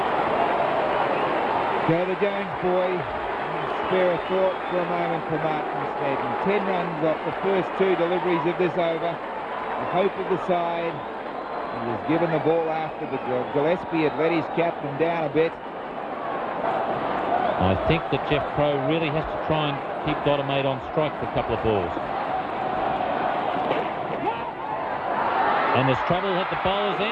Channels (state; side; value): identical; both; correlation 1.00